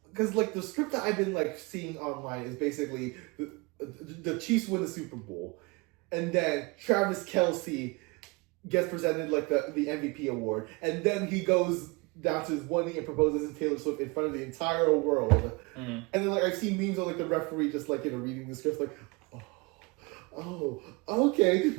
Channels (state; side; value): quieter; left; 27.0 dB